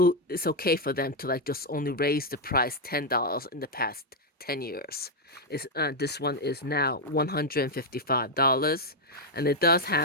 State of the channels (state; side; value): normal; both; correlation 0.00